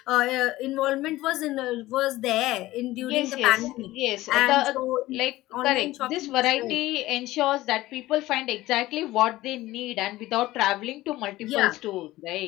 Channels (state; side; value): quieter; right; 17.2 dB